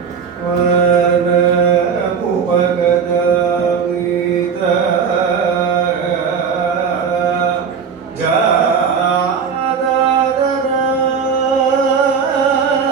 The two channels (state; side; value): quieter; left; 6.4 dB